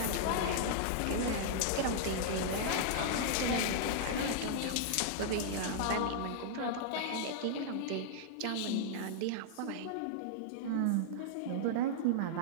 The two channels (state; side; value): different; both; correlation -0.01